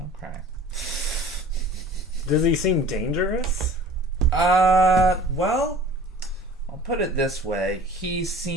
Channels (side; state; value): both; normal; correlation 0.45